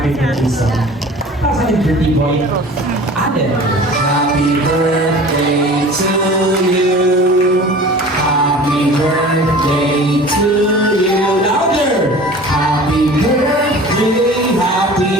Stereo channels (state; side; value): normal; both; correlation 0.41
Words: birthday song. Para sa ating birthday boy, Allen. Happy birthday to you. Happy birthday to you. Louder! Happy birthday,